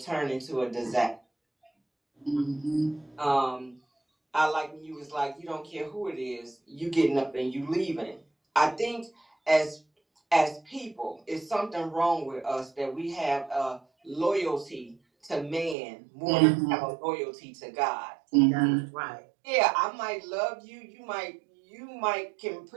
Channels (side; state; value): left; drops out; at 15.8 s